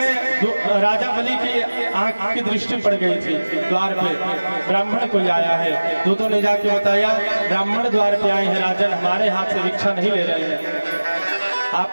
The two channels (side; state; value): both; inverted; correlation -1.00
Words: राजा बलि की आंख की दृष्टि पड़ गई थी, द्वार पे ब्राह्मण कोई आया है। दूतों ने जाके बताया ब्राह्मण द्वार पे आए हैं राजन, हमारे हाथ से भिक्षा नहीं ले रहे हैं,